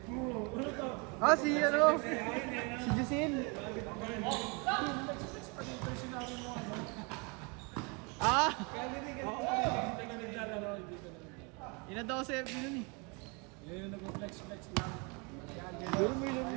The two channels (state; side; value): quieter; left; 31.6 dB